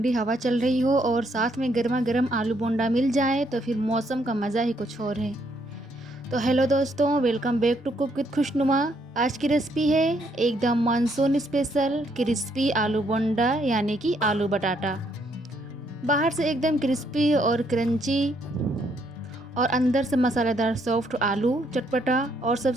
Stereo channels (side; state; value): both; normal; correlation 0.71